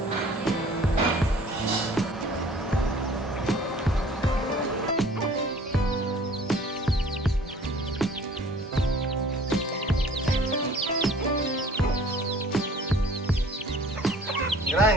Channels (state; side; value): normal; both; correlation 0.51